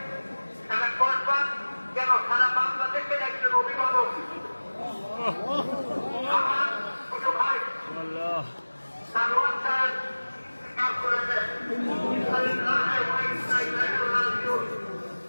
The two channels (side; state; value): both; inverted; correlation -1.00